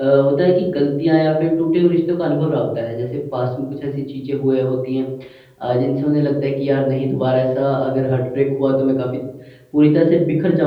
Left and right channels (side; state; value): both; identical; correlation 1.00